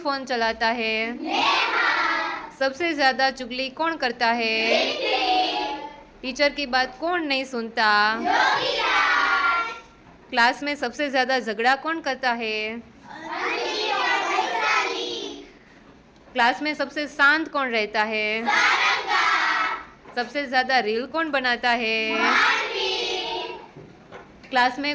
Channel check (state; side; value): identical; both; correlation 1.00